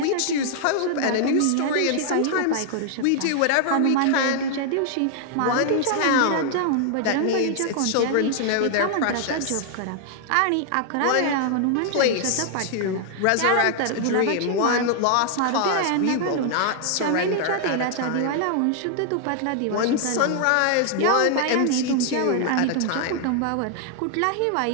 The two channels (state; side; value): different; both; correlation 0.00